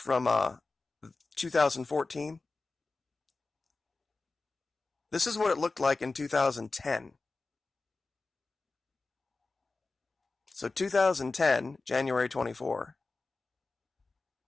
2014. This is what it looked like in 2010. So 2010, January 24.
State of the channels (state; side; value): quieter; right; 3.7 dB